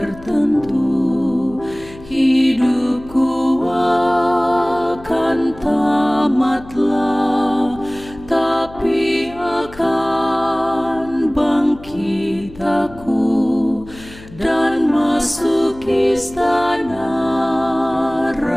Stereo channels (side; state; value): left; noise; hum, 19 dB below the sound